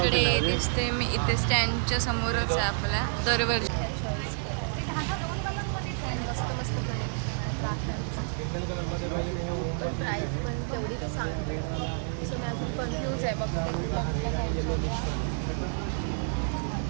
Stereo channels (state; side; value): silent; left; digital silence